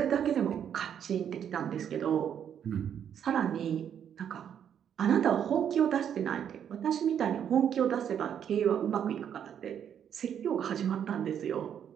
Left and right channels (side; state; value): left; quieter; 8.9 dB